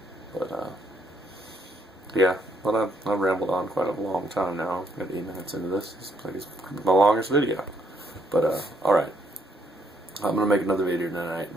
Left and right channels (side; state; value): both; normal; correlation 0.71